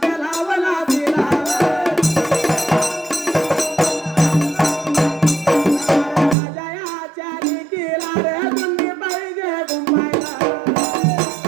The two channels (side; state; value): left; drops out; at 6.4 s